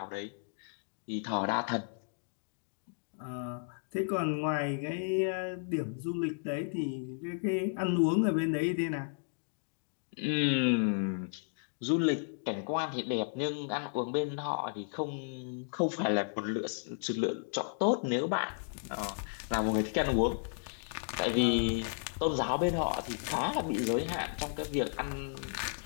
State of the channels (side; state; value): right; silent; digital silence